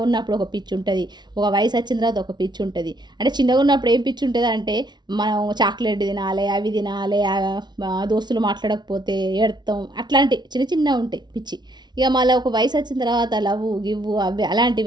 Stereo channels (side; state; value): left; late; 0.20 ms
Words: ఉన్నప్పుడు ఒక పిచ్చి ఉంటుంది, ఒక వయసు వచ్చిన తర్వాత ఒక పిచ్చి ఉంటుంది. అంటే చిన్నగా ఉన్నప్పుడు ఏం పిచ్చి ఉంటుంది అంటే, మనం చాక్లెట్ తినాలి, అవి తినాలి, దోస్తులు మాట్లాడకపోతే ఏడతాం, అట్లాంటి చిన్న చిన్న ఉంటాయి పిచ్చి. ఇక మళ్ళీ ఒక వయసు వచ్చిన తర్వాత లవ్వు గివ్వు అవి